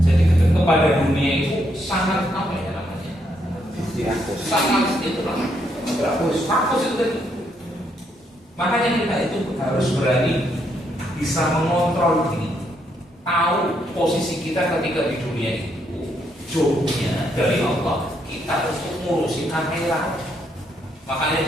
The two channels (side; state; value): both; normal; correlation 0.75